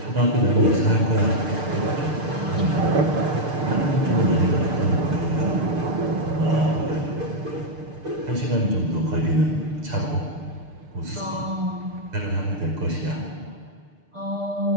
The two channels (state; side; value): late; left; 6.6 ms